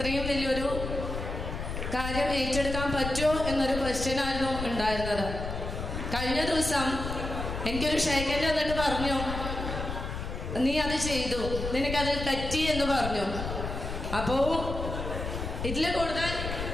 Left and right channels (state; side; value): noise; left; rumble, 5 dB below the sound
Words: വലിയൊരു കാര്യം ഏറ്റെടുക്കാൻ പറ്റുമോ എന്നൊരു ക്വസ്റ്റ്യനായിരുന്നു ഉണ്ടായിരുന്നത്. കഴിഞ്ഞ ദിവസം എനിക്കൊരു ഷേക്കൻഡ് വന്നിട്ട് പറഞ്ഞു, നീ അത് ചെയ്തു, നിനക്കത് പറ്റി എന്ന് പറഞ്ഞു. അപ്പോൾ ഇതിൽ കൂടുതൽ